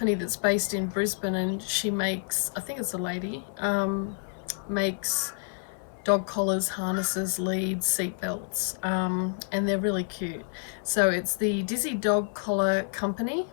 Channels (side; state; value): right; silent; 56 dB below the other